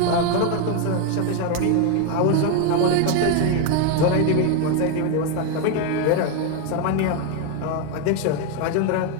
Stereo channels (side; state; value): both; different; correlation 0.01